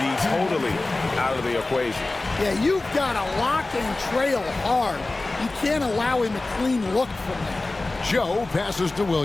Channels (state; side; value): quieter; right; 3.1 dB